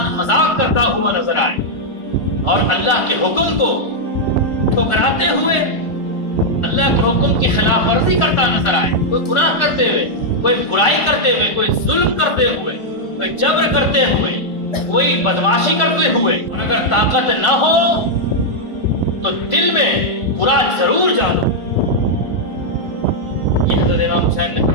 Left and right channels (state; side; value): late; right; 1.4 ms